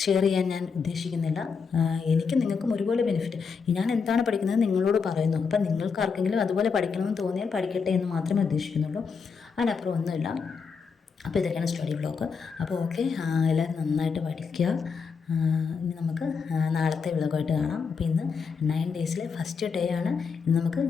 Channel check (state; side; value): quieter; right; 5.6 dB